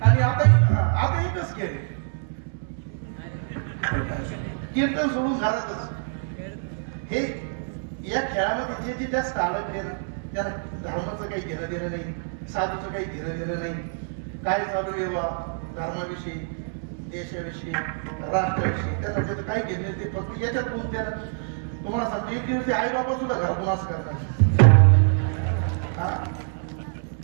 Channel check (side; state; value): left; silent; 61 dB below the other